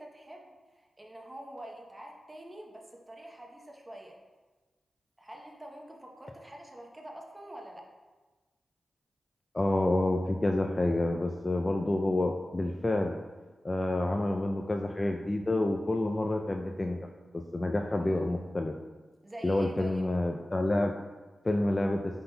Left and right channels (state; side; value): normal; both; correlation 0.97